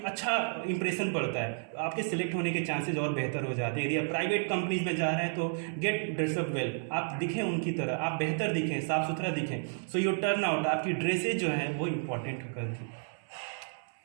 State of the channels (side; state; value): left; silent; 57 dB below the other